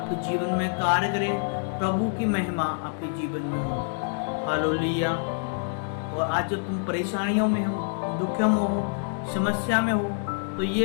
जीवन में कार्य करे, प्रभु की महिमा आपके जीवन में हो। हालेलुया। और आज जब तुम परेशानियों में हो, दुखों में हो, समस्या में हो, तो ये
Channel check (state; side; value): silent; right; digital silence